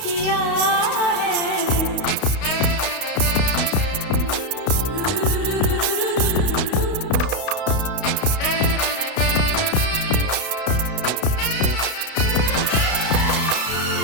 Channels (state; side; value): late; right; 32 ms